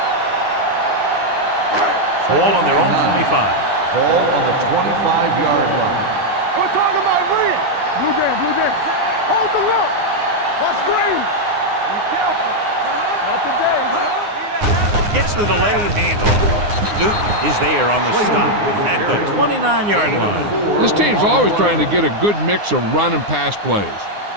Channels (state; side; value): late; left; 9.7 ms